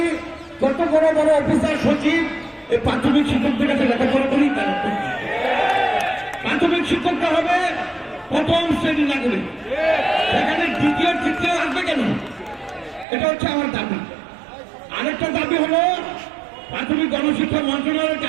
কত বড় বড় অফিসার সচিব এই প্রাথমিক শিক্ষকদের কাছে লেখাপড়া করি। প্রাথমিক শিক্ষকটা হবে প্রথম শ্রেণী নাগরিক, সেখানে দ্বিতীয় তৃতীয় আসবে কেন? এটা হচ্ছে আমার দাবি। আরেকটা দাবি হলো প্রাথমিক গণশিক্ষা মন্ত্রণালয়ের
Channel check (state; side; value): drops out; left; at 13.1 s